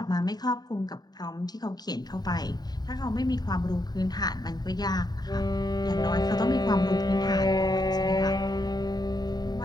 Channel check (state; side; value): late; right; 0.20 ms